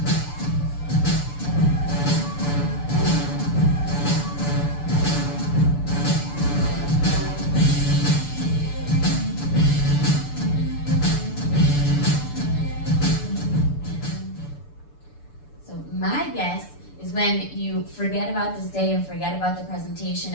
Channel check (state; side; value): late; right; 6.9 ms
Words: My guess is when you forget about this day and forget about the presentation